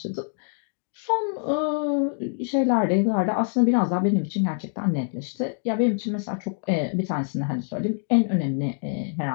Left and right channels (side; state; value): right; silent; digital silence